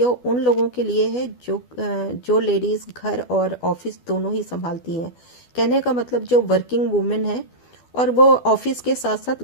उन लोगों के लिए है जो लेडीज़ घर और ऑफिस दोनों ही संभालती हैं। कहने का मतलब जो वर्किंग वुमेन है और वो ऑफिस के साथ साथ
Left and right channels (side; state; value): right; late; 12 ms